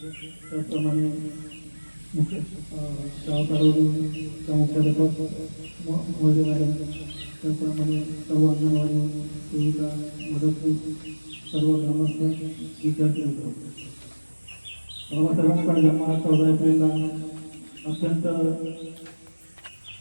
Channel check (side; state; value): both; inverted; correlation -1.00